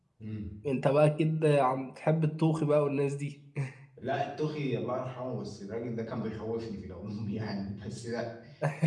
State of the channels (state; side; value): identical; both; correlation 1.00